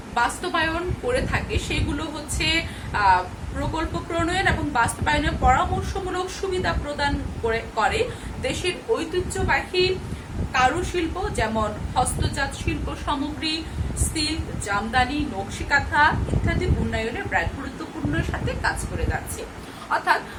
বাস্তবায়ন করে থাকে সেগুলো হচ্ছে প্রকল্প প্রণয়ন এবং বাস্তবায়নের পরামর্শমূলক সুবিধা প্রদান করে দেশের ঐতিহ্যবাহী কারুশিল্প যেমন হস্তজাত শিল্প সামগ্রী, সিল্ক, জামদানি, নকশি কাঁথা ইত্যাদি উন্নয়নে ব্র্যাক গুরুত্বপূর্ণ সাথে কাজ করে যাচ্ছে। অর্থাৎ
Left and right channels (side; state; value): both; identical; correlation 1.00